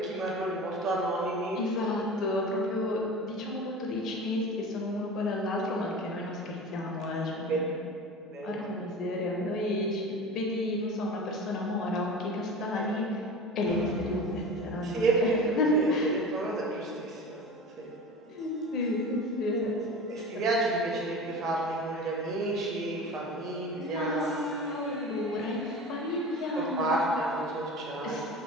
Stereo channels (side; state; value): both; normal; correlation 0.33